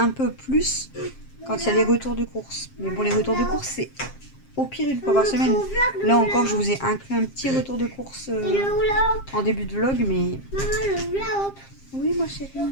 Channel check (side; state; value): right; late; 7.5 ms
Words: peu plus quand il y a les retours de course. Mais bon, les retours de course c'est au pire une fois par semaine. Là encore, je vous ai inclus un petit retour de course Et le Loula, en début de vlog, mais maman, le Loula, oui, moi chérie, je